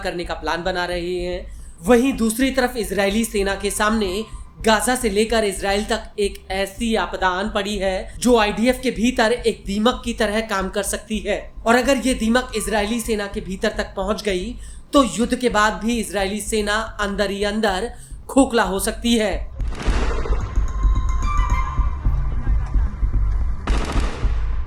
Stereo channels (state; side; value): identical; both; correlation 1.00